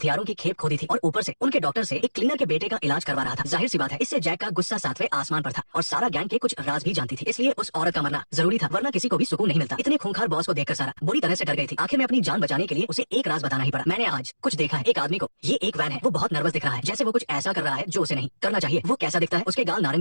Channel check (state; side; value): inverted; both; correlation -1.00